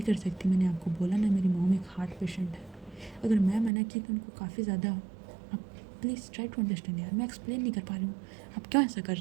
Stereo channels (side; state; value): left; drops out; at 3.7 s